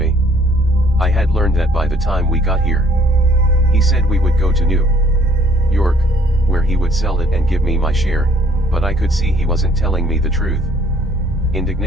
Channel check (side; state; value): both; normal; correlation 0.61